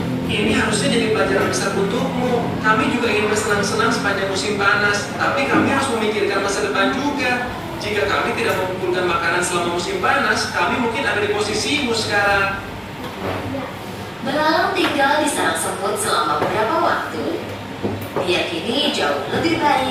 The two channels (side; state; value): both; identical; correlation 1.00